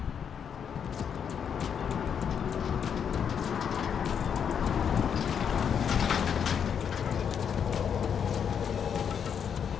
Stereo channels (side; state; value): right; quieter; 7.6 dB